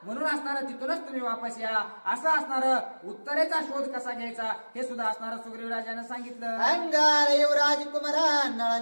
म्हणून असणारा तिथूनच तुम्ही वापस या. असं असणार उत्तरेचा शोध कसा घ्यायचा हे सुद्धा असणार सुग्रीवराजानं सांगितलं. अंगार युवराज कुमार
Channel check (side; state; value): both; inverted; correlation -1.00